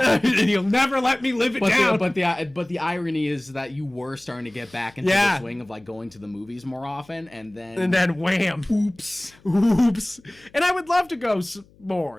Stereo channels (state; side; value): noise; left; hum, 29 dB below the sound